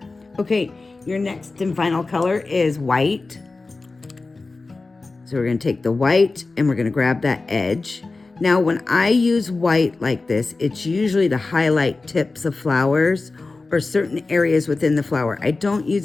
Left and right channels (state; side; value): quieter; right; 3.6 dB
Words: Okay, your next and final color is white. So we're going to take the white and we're going to grab that edge. Now, when I use white like this, it's usually to highlight tips of flowers or certain areas within the flower. I don't